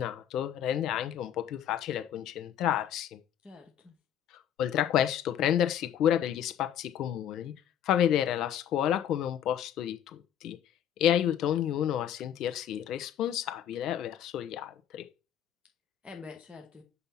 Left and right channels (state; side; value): quieter; right; 10.1 dB